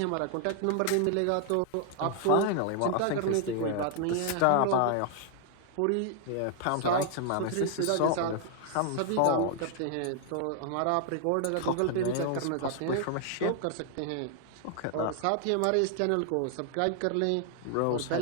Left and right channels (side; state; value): both; different; correlation 0.00